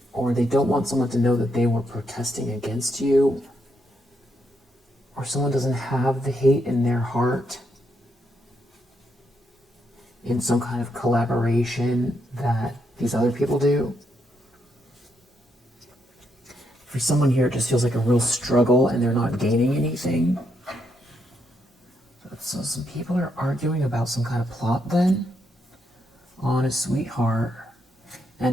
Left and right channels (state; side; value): normal; both; correlation 0.78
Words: or they don't want someone to know that they were protesting against you, or someone doesn't have the hate in their heart in some kind of collaboration that these other people do. For someone here, it just feels like a real struggle and they're not gaining anything. So some people are arguing about some kind of plot then on a sweetheart,